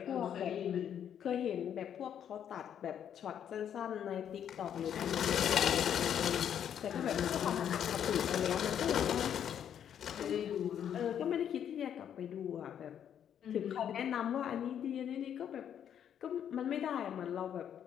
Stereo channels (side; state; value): right; quieter; 9.2 dB